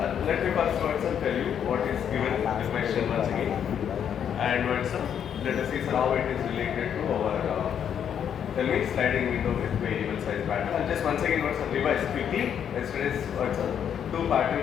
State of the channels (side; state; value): right; quieter; 8.7 dB